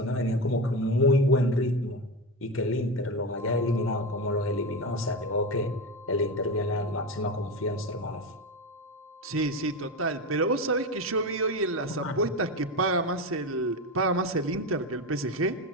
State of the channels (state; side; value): normal; both; correlation 0.19